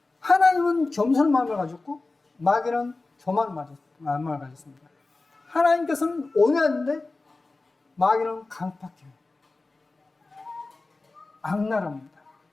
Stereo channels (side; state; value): right; quieter; 3.4 dB